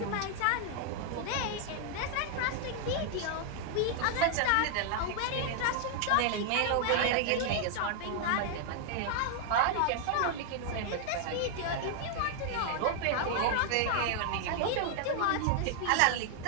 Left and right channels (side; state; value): both; different; correlation 0.00